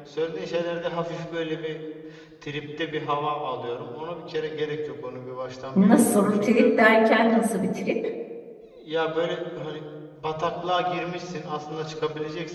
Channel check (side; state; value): both; identical; correlation 1.00